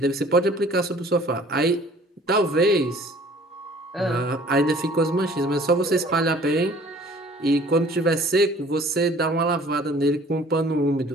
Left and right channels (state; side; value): normal; both; correlation 0.52